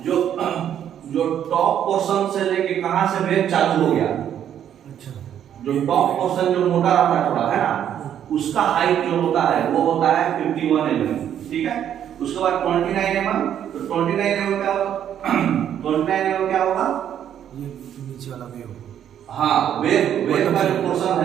जो टॉप पोर्शन से लेके कहां से वेव चालू हो गया, अच्छा, जो टॉप पोर्शन जो मोटा रहता है थोड़ा, है ना, उसका हाइट जो होता है वो होता है 51 mm। ठीक है, उसके बाद 29 mm, तो 29 mm क्या होगा 29 mm क्या होगा, ये नीचे वाला वेव। हाँ, वेव का जो पोर्शन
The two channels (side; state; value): left; quieter; 9.9 dB